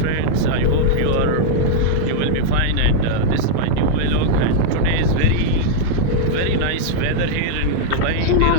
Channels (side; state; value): both; different; correlation -0.01